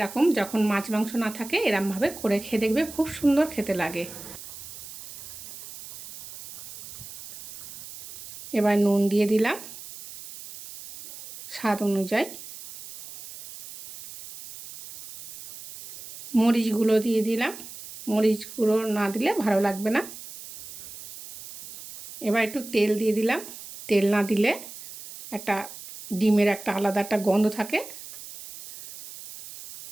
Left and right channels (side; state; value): right; noise; hiss, 14 dB below the sound